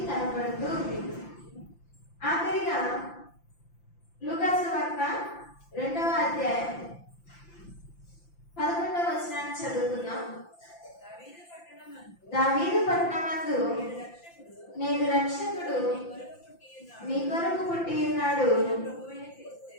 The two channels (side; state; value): right; late; 5.8 ms